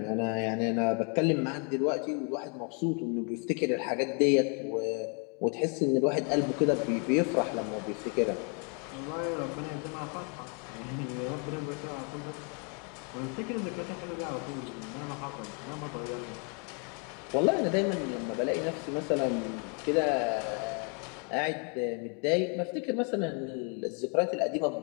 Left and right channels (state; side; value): quieter; right; 38.0 dB